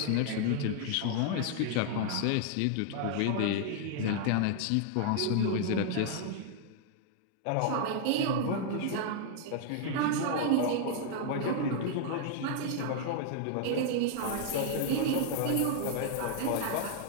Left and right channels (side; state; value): both; different; correlation -0.01